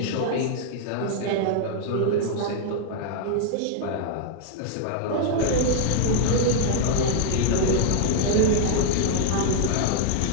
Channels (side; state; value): both; different; correlation -0.01